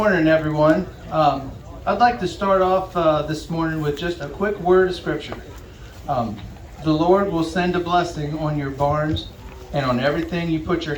everyone. I'd like to start off this morning with just a quick word of scripture. The Lord will send a blessing on your barns and on everything you put your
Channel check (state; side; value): identical; both; correlation 1.00